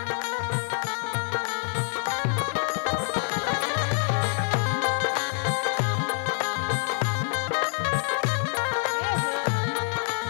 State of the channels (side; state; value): right; silent; 58 dB below the other